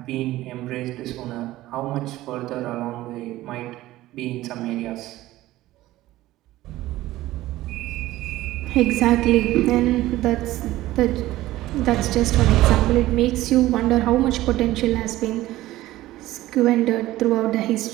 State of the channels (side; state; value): left; quieter; 16.2 dB